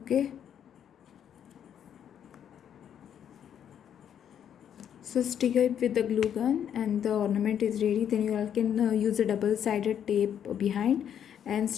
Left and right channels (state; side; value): quieter; right; 9.1 dB